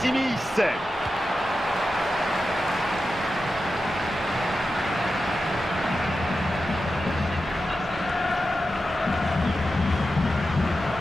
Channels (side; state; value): both; normal; correlation 0.91